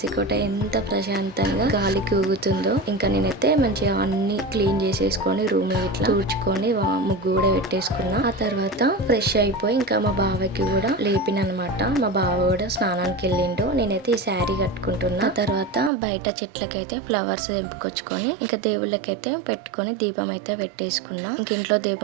కోట ఎంత ప్రశాంతంగా గాలికి ఊగుతుందో. ఇంకా నేనైతే మంచిగా అన్ని క్లీన్ చేసేసుకొని రూమ్ ఇట్లా తుడుచుకొని ముగ్గు కూడా పెట్టేసుకున్నా. ఆ తర్వాత ఫ్రెష్ అయిపోయి ఇంకా మా బావకి కూడా లేపిన అనమాట. మా బావ కూడా స్నానానికి వెళ్ళిండు. నేనైతే ఈ శారీ కట్టుకుంటున్నా. ఆ తర్వాత బయట చెట్లకైతే ఫ్లవర్స్ తెంపుకొచ్చుకొని ఇంకా దేవుళ్ళకైతే పెట్టుకొని దీపం అయితే పెట్టేసుకున్నా. ఇంక ఇంట్లో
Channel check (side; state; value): left; drops out; at 15.9 s